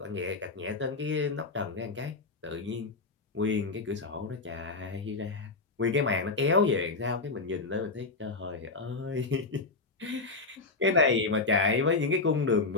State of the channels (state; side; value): quieter; right; 3.8 dB